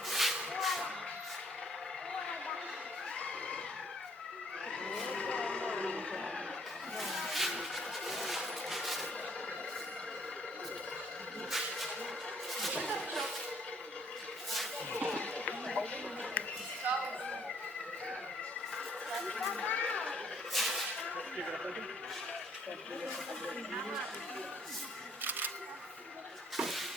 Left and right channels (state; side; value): normal; both; correlation 0.63